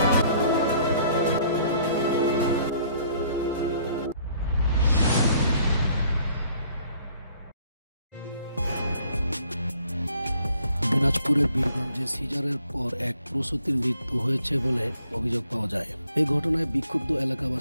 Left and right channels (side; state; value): both; inverted; correlation -0.62